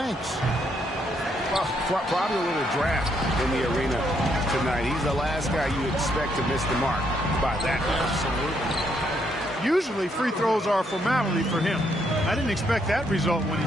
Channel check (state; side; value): normal; both; correlation 0.74